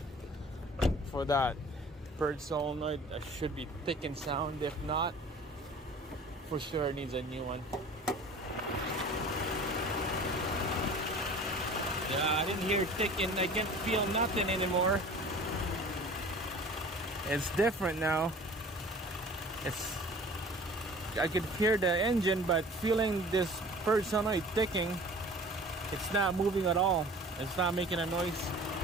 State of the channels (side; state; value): both; normal; correlation 0.44